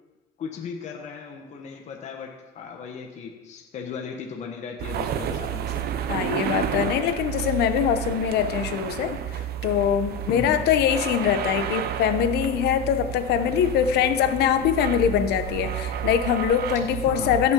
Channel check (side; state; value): right; quieter; 5.1 dB